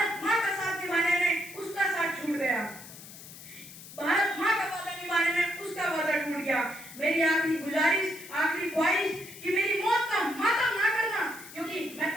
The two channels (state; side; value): noise; left; hiss, 16 dB below the sound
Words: माँ का साथ निभाने में उसका साथ छूट गया, भारत माँ का वादा निभाने में उसका वादा टूट गया। मेरी आखिरी गुजारिश, आखिरी ख्वाहिश कि मेरी मौत का मातम ना करना, क्योंकि